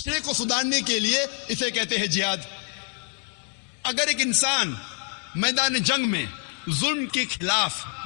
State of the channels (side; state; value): right; quieter; 38.4 dB